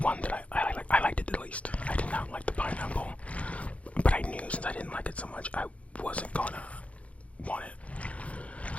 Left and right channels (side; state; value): right; late; 0.064 ms